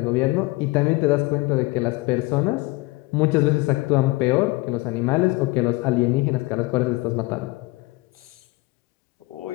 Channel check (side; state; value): right; quieter; 22.5 dB